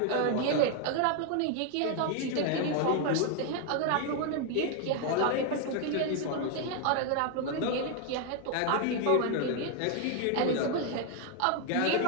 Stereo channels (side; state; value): both; different; correlation 0.00